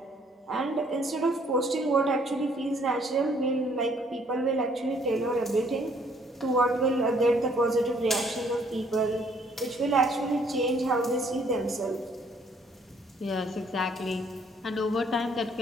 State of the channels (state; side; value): normal; both; correlation 0.63